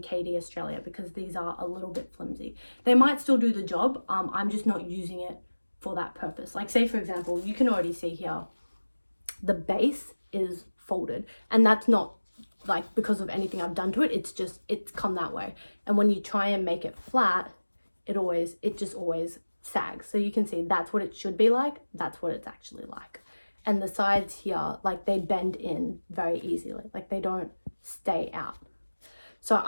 KD Australia, because these are a little bit flimsy. They might still do the job. I'm just not using it for that purpose. Like say for example, you can already see here, the base is folded, and that's not like because of anything I've done to it. It's come that way. And when you try and make it flat, it just always sags. So you can see that's what it should be like. That's what it's actually like. And the sides here, like they bend in very easily. Like they don't stay out. So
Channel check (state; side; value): inverted; both; correlation -1.00